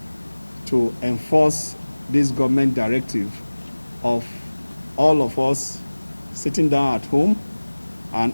to enforce this government directive of all of us sitting down at home and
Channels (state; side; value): inverted; both; correlation -1.00